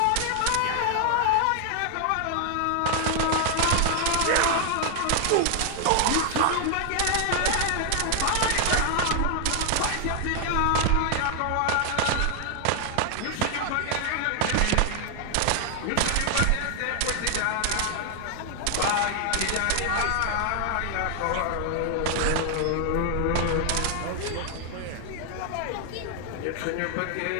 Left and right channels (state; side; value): different; both; correlation 0.00